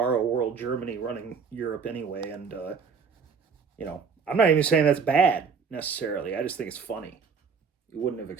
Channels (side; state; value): left; quieter; 5.8 dB